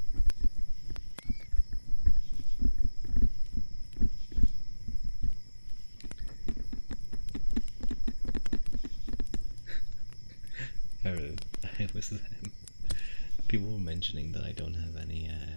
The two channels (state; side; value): inverted; both; correlation -1.00